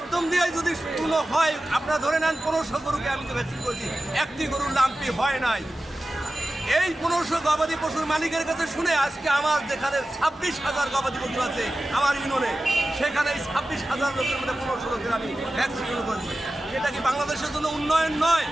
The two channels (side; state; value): both; normal; correlation 0.94